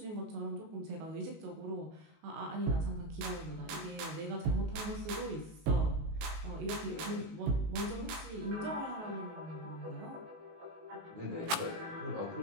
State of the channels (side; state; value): left; late; 19 ms